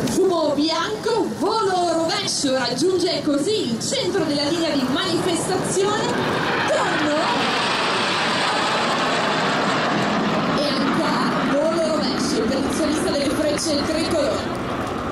Fumo bianco, volo rovescio, raggiunge così il centro della linea di manifestazione, tonno e ancora volo rovescio per il solista delle frecce tricolori.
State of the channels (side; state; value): both; identical; correlation 1.00